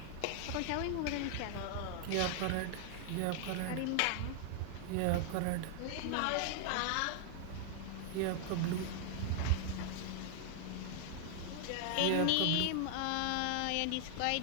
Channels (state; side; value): different; both; correlation 0.00